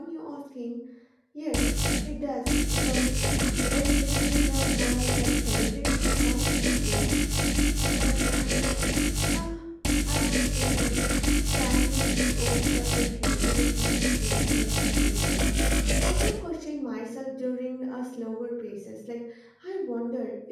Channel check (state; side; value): identical; both; correlation 1.00